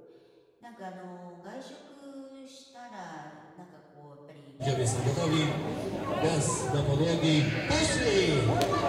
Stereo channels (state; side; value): identical; both; correlation 1.00